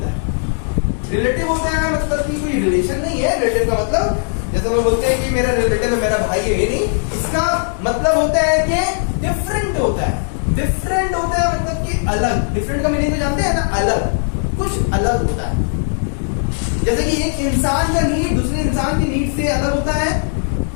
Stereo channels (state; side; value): silent; right; digital silence